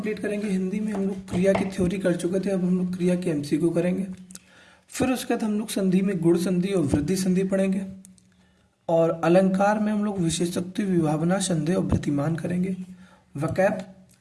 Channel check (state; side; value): identical; both; correlation 1.00